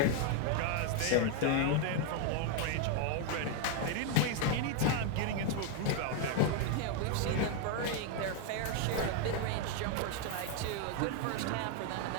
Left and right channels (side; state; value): both; different; correlation 0.00